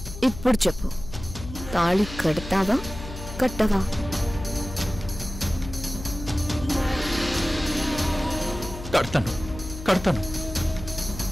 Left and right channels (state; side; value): noise; left; hum, 11 dB below the sound